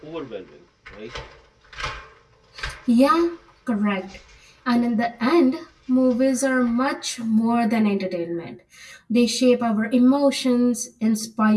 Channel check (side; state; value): both; identical; correlation 1.00